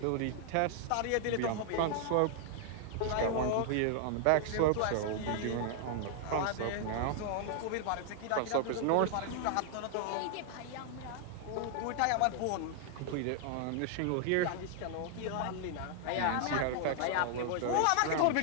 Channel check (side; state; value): both; different; correlation 0.00